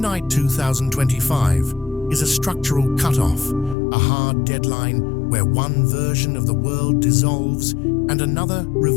2025 is a structural cutoff, a hard deadline where one version of the world dissolves and another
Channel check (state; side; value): drops out; right; at 3.8 s